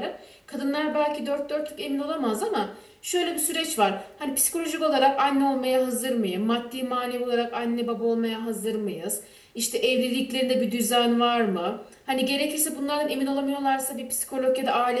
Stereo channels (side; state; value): both; identical; correlation 1.00